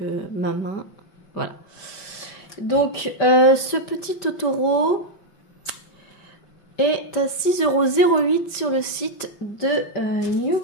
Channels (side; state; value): right; late; 5.1 ms